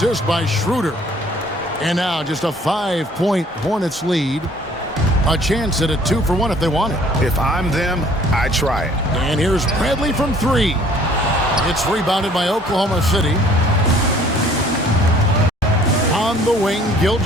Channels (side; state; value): both; normal; correlation 0.56